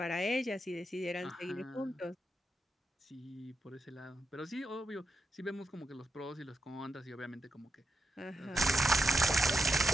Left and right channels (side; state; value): both; normal; correlation 0.85